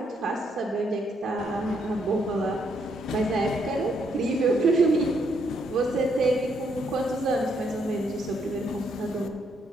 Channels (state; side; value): normal; both; correlation 0.74